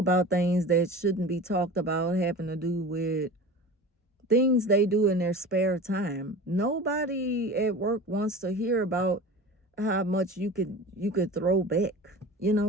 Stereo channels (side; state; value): both; normal; correlation 0.35